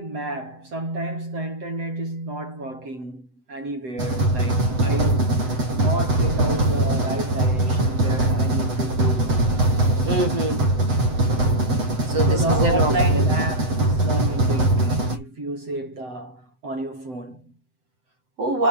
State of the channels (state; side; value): late; left; 7.9 ms